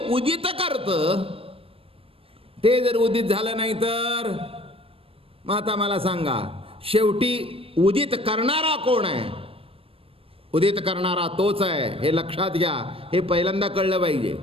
उदित करतं ते जर उदित झालं नाही तर मग आता मला सांगा, शेवटी उदित करणारा कोण आहे? उदित करणारा तोच आहे, हे लक्षात घ्या. हे पहिल्यांदा कळलं पाहिजे,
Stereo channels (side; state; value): left; late; 0.27 ms